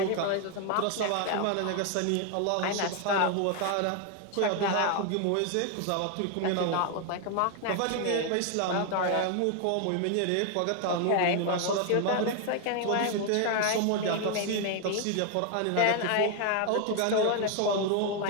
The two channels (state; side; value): different; both; correlation 0.01